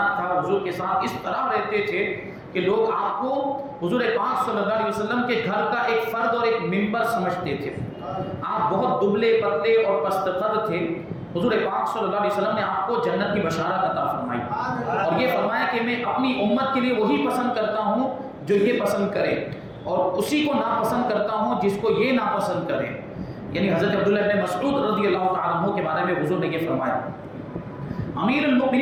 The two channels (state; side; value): identical; both; correlation 1.00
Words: تھا، حضور کے ساتھ اس طرح رہتے تھے کہ لوگ آپ کو حضور پاک صلی اللہ علیہ وسلم کے گھر کا ایک فرد اور ایک ممبر سمجھتے تھے۔ آپ بہت دبلے پتلے اور پست قد تھے۔ حضور پاک صلی اللہ علیہ وسلم نے آپ کو جنت کی بشارت عطا فرمائی، اور یہ فرمایا کہ میں اپنی امت کے لیے وہی پسند کرتا ہوں جو یہ پسند کرے، اور اسی کو ناپسند کرتا ہوں جس کو یہ ناپسند کرے۔ یعنی حضرت عبداللہ ابن مسعود رضی اللہ تعالیٰ عنہ کے بارے میں حضور نے یہ فرمایا۔ امیر